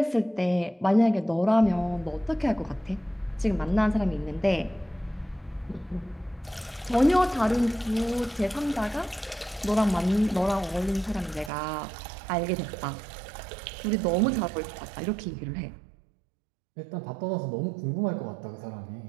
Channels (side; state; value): left; drops out; at 11.5 s